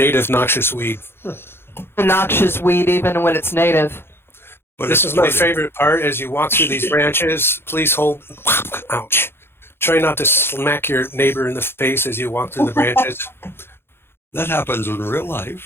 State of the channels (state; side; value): late; right; 0.11 ms